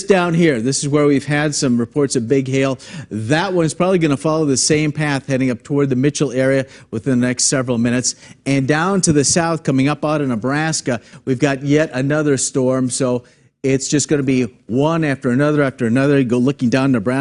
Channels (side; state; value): both; identical; correlation 1.00